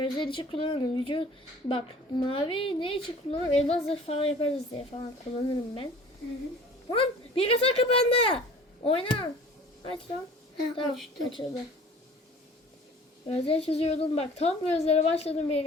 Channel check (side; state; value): both; normal; correlation 0.46